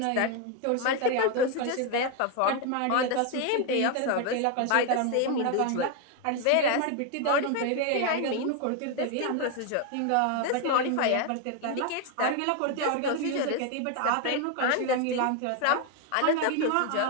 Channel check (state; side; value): different; both; correlation 0.01